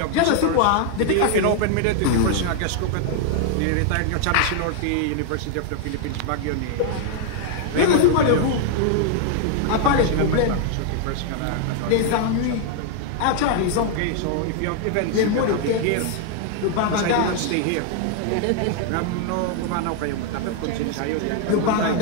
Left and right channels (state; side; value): different; both; correlation 0.00